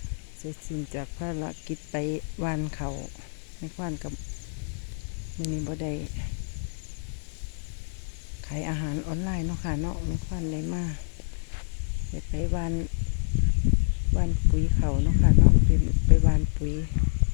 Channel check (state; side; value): silent; right; digital silence